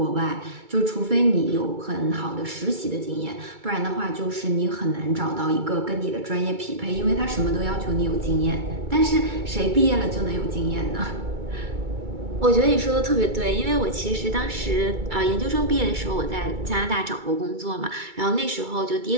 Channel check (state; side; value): late; left; 2.3 ms